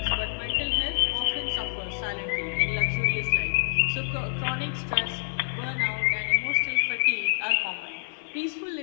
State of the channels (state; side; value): silent; right; 60 dB below the other